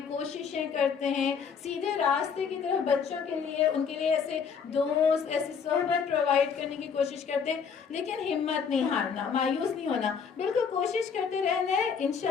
कोशिशें करते हैं सीधे रास्ते की तरफ बच्चों के लिए, उनके लिए ऐसे दोस्त, ऐसी सोहबत प्रोवाइड करने की कोशिश करते हैं, लेकिन हिम्मत नहीं हारना, मायूस नहीं होना, बिल्कुल कोशिश करते रहना है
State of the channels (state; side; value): quieter; right; 6.4 dB